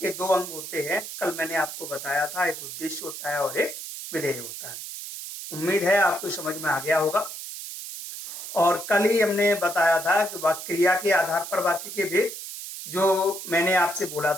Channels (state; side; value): noise; right; hiss, 9 dB below the sound